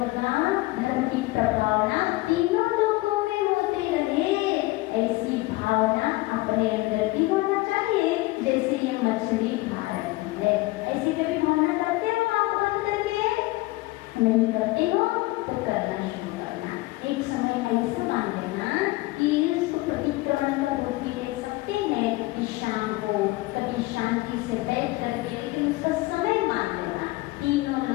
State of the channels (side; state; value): right; quieter; 20.6 dB